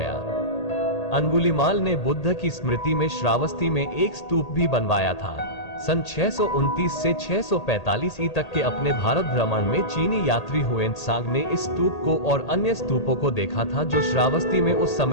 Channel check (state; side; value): late; right; 1.8 ms